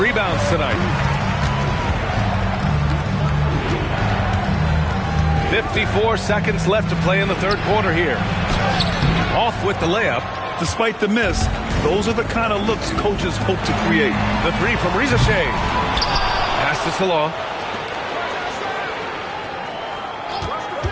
tonight. 54 seconds left to play in the third quarter here. Off with the layup. Despite the miss, those are the kind of looks coaches hope to create. The three from Risacher. Pass to Salon.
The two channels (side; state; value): both; identical; correlation 1.00